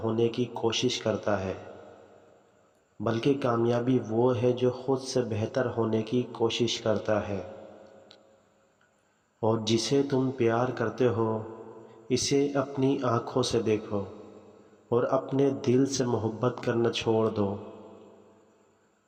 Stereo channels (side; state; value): both; identical; correlation 1.00